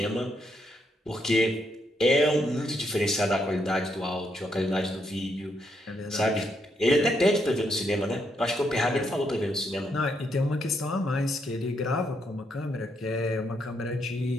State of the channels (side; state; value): both; normal; correlation 0.77